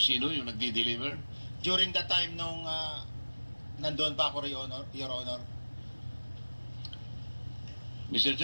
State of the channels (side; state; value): both; inverted; correlation -1.00